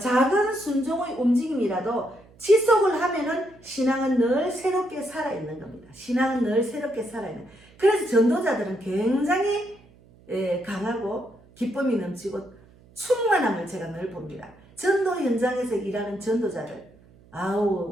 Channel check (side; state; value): right; noise; hum, 27 dB below the sound